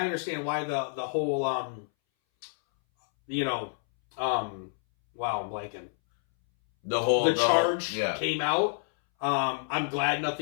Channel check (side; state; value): right; silent; 59 dB below the other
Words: understand why the whole, wow, I'm blanking. The charge came out. I'm glad